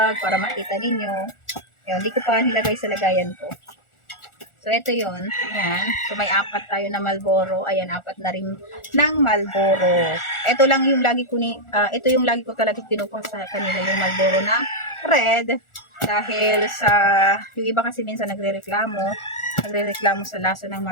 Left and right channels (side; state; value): right; late; 1.4 ms